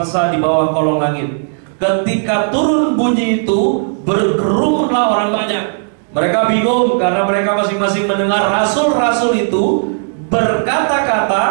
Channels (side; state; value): left; silent; digital silence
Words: di bawah kolong langit. Ketika turun bunyi itu, berkerumunlah orang banyak. Mereka bingung karena mereka masing-masing mendengar rasul-rasul itu